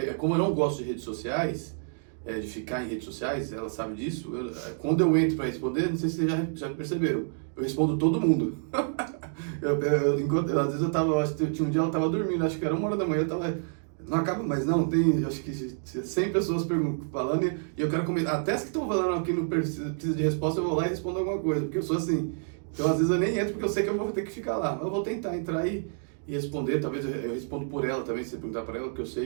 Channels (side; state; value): left; silent; digital silence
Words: como eu não gosto de redes sociais, de ficar em redes sociais, ela sabe disso. Quando eu entro para responder, não sei se vocês já perceberam, eu respondo todo mundo. Às vezes acho que tinha um dia ela estava dormindo, acho que era 1h da manhã, eu tava, não acaba mais não, tem acho que 100 pessoas falando e eu quero comentar, até as que estão falando aqui não precisa de resposta, eu vou lá e respondo alguma coisa, porque eu sou assim. Então às vezes eu nem entro porque eu sei que eu vou ter que ficar lá, mas eu vou tentar entrar e responder, talvez eu respondo por ela também, se você perguntar para ela, porque eu